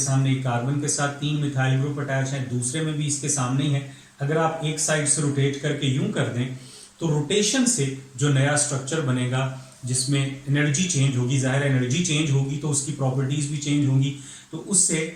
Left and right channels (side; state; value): both; identical; correlation 1.00